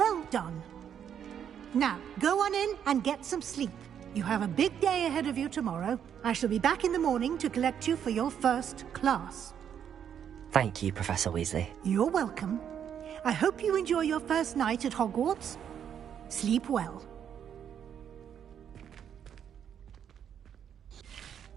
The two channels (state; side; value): quieter; left; 8.7 dB